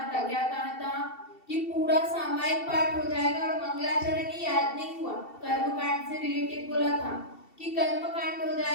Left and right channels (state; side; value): late; right; 2.7 ms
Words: था, क्या कहा था कि पूरा सामायिक पाठ हो जाएगा और मंगलाचरण ही याद नहीं हुआ। कर्मकांड से रिलेटेड बोला था कि कर्मकांड हो